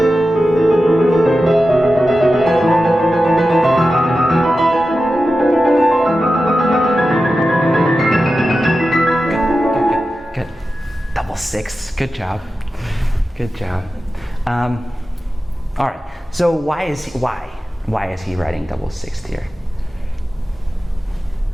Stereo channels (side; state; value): both; normal; correlation 0.93